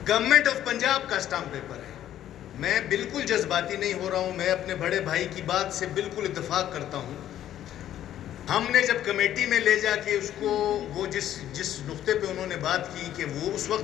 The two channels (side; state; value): right; quieter; 11.7 dB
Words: गवर्नमेंट ऑफ पंजाब का स्टाम्प पेपर है। मैं बिल्कुल जज्बाती नहीं हो रहा हूं, मैं अपने बड़े भाई की बात से बिल्कुल इत्तेफाक करता हूं। हमने जब कमेटी में ले जाके उसको वो जिस नुक्ते पे उन्होंने बात की कि वो उस वक्त